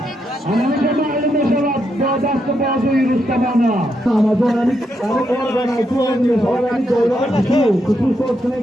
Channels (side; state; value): both; normal; correlation 0.81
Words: Anamca mahalline cevap dastı bazı yürüstemana. Amazonani organa tuğanıyor. Organi doyuran kutu sosuna